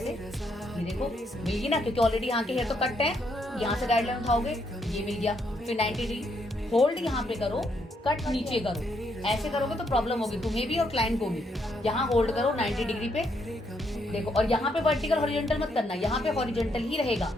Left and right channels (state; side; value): normal; both; correlation 0.75